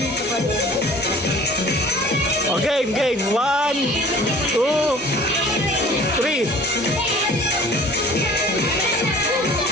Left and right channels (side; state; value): both; normal; correlation 0.47